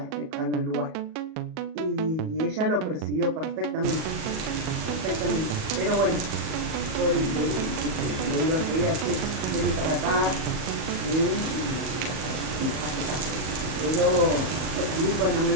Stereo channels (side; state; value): left; late; 38 ms